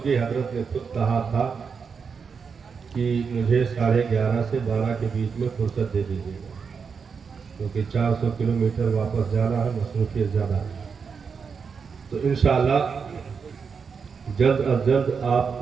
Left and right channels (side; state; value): left; quieter; 5.8 dB